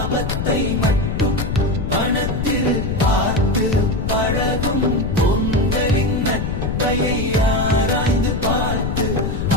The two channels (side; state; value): left; noise; rumble, 2 dB below the sound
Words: மட்டும் பணத்தில் பார்த்து பழகும் பொங்கலின் நட்பையை ஆராய்ந்து பார்த்து